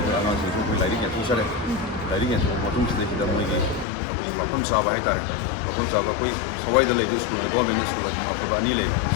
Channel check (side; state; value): right; drops out; at 3.9 s